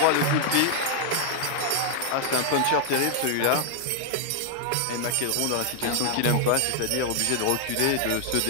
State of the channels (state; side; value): different; both; correlation 0.00